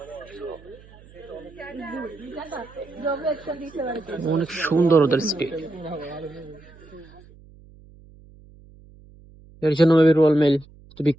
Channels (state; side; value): noise; right; hum, 24 dB below the sound